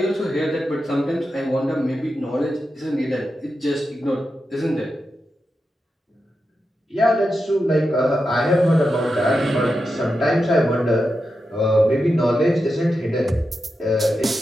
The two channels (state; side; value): normal; both; correlation 0.89